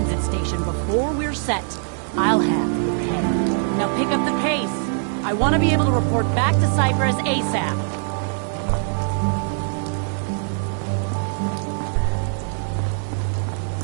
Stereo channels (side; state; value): left; silent; 64 dB below the other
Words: station before we're set, I'll have your head. Now pick up the pace. I want to be able to report back to Cyprus ASAP.